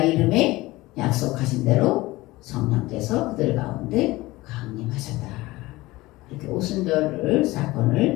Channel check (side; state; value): right; quieter; 19.6 dB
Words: 이름에 약속하신 대로 성령께서 그들 가운데 강림하셨다. 이렇게 오순절